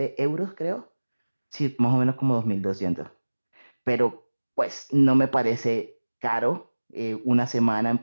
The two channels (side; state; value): both; inverted; correlation -1.00